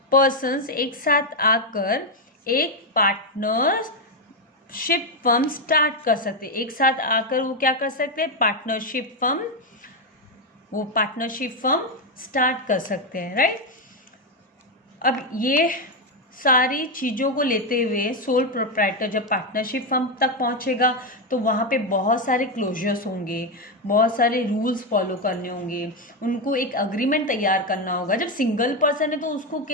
persons एक साथ आकर एक पार्टनरशिप फर्म स्टार्ट कर सकते। एक साथ आकर वो क्या कर सकते हैं? पार्टनरशिप फर्म स्टार्ट कर सकते हैं, राइट? अब ये सारी चीज़ों को लेते हुए सोल प्रोप्राइटर जब पार्टनरशिप फर्म तक पहुंचेगा तो वहाँ पे बहुत सारे क्लोजर्स होंगे, बहुत सारे रूल्स फॉलो करने होंगे, उनको एक अग्रीमेंट तैयार करना होगा। जब सिंगल पर्सन है तो उसको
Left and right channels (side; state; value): both; normal; correlation 0.06